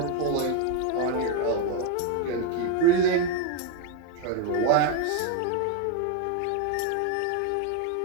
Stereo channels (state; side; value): different; both; correlation 0.01